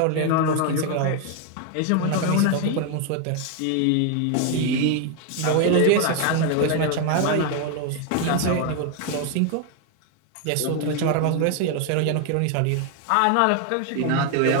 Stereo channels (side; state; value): both; different; correlation 0.01